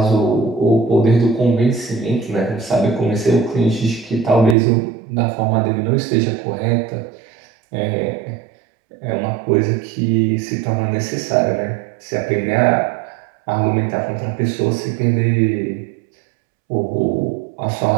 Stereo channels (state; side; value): drops out; left; at 4.5 s